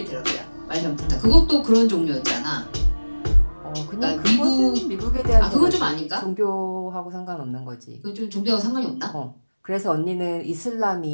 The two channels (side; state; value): both; inverted; correlation -1.00